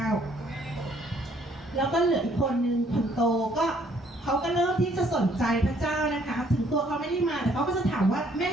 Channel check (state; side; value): normal; both; correlation 0.64